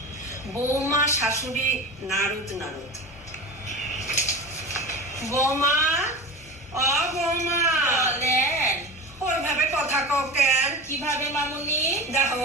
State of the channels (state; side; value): normal; both; correlation 0.29